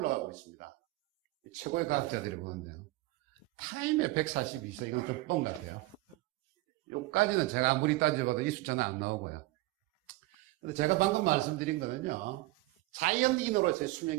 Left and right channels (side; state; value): left; quieter; 20.0 dB